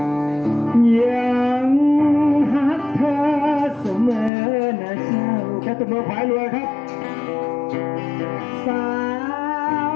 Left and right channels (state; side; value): drops out; right; at 4.3 s